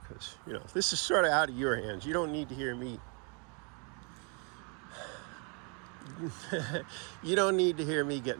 because this is sort of out of your hands. You don't need to hear me. You don't need to hear me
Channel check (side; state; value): left; quieter; 36.2 dB